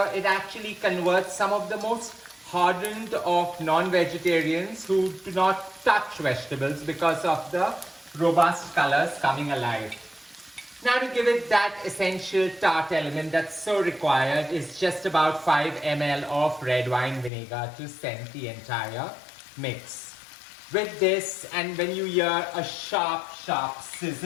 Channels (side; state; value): right; drops out; at 17.3 s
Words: it actually converts some of the most hardened of non-vegetarians who do not touch vegetables because of the robust colors coming alive. Now to give it that essential tart element that's so required is just about 5 ml of red wine vinegar to scent the entire mix. With this, and when you hear a sharp